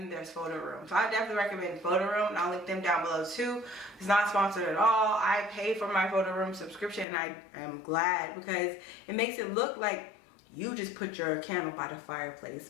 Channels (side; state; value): right; drops out; at 7.1 s